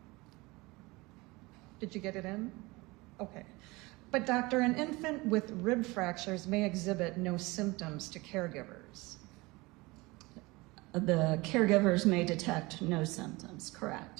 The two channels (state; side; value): quieter; left; 23.0 dB